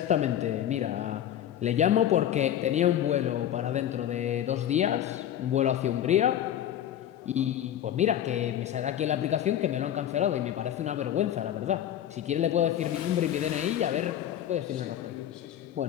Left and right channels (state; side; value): quieter; right; 10.9 dB